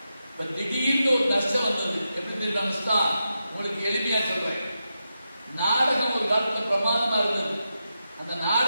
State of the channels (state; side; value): inverted; both; correlation -0.88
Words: இப்ப திடீர்னு ஒரு நஷ்டம் வந்தது. எப்படி தெரியுமா நஷ்டம்? உங்களுக்கு எளிமையா சொல்றேன். நாடகம் ஒரு காலத்துல பிரமாதமா இருந்தது. அந்த